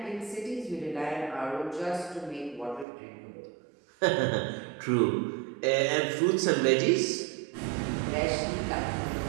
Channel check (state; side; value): drops out; left; at 2.9 s